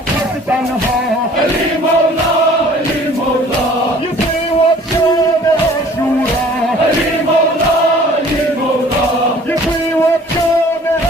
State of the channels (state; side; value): normal; both; correlation 0.52